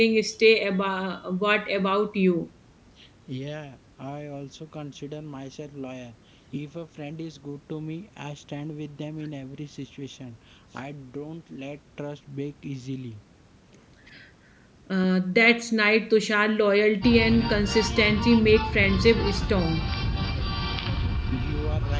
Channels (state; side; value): identical; both; correlation 1.00